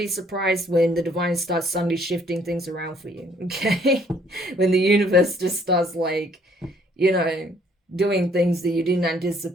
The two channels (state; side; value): normal; both; correlation 0.63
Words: surprised when the divine starts suddenly shifting things around for you, okay? When the universe just starts, like, you know, doing things that you didn't